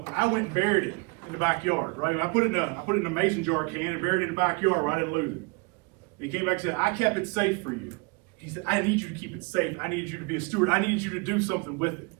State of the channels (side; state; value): left; quieter; 28.9 dB